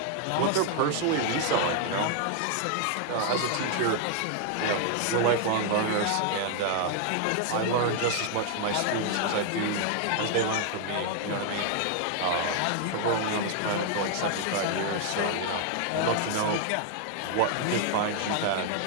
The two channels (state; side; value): different; both; correlation 0.00